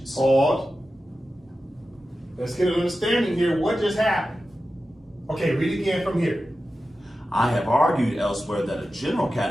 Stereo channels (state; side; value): normal; both; correlation 0.93